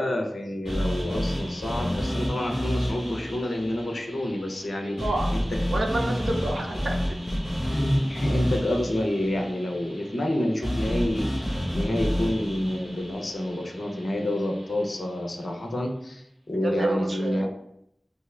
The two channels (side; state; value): both; normal; correlation 0.96